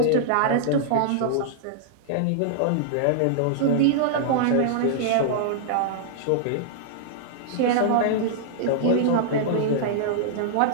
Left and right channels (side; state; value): both; different; correlation -0.01